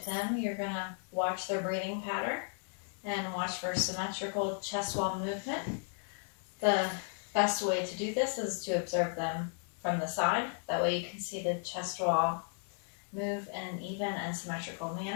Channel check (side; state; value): right; silent; 55 dB below the other